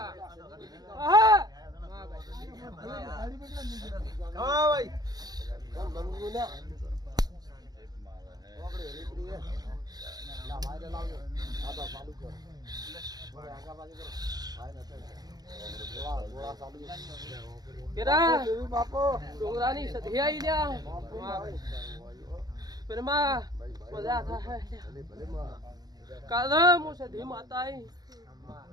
હા ભાઈ ડુંગરાની સધી આઈ લ્યા પેરમાં મજા થાય કાલે હું સધી માતા આઈ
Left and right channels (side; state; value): left; late; 0.19 ms